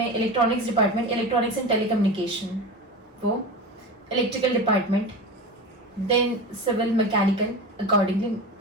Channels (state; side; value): normal; both; correlation 0.27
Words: electronics department, electronics and telecommunication, वो electrical department, then civil mechanical, accordingly